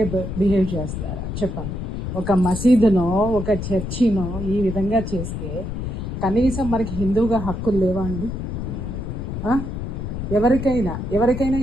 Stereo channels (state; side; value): noise; left; rumble, 5 dB below the sound